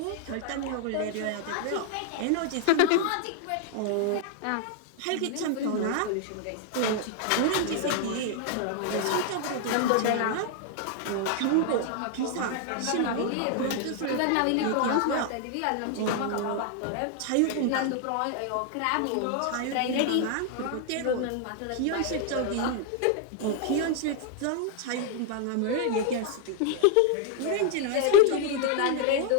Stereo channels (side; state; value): both; different; correlation 0.00